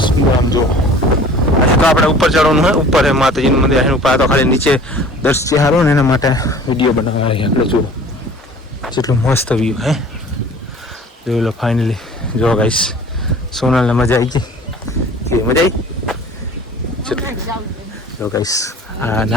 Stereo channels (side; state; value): both; normal; correlation 0.46